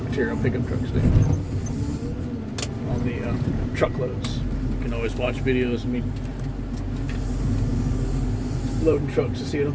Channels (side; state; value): both; identical; correlation 1.00